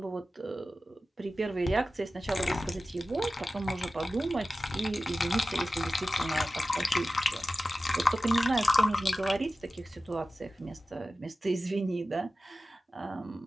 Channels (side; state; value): both; normal; correlation 0.94